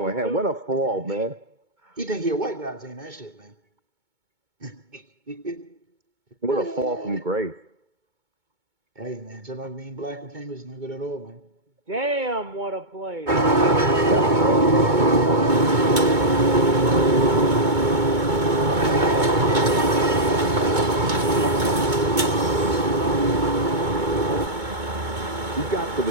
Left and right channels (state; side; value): late; left; 2.2 ms